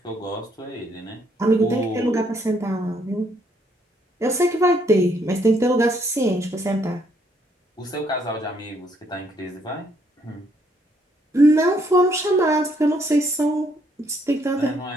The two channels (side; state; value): both; normal; correlation 0.70